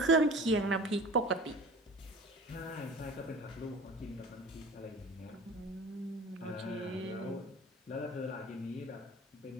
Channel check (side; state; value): both; normal; correlation 0.40